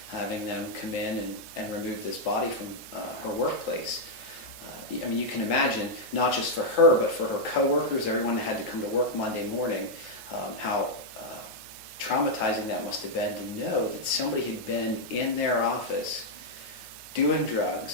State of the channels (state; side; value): late; right; 9.4 ms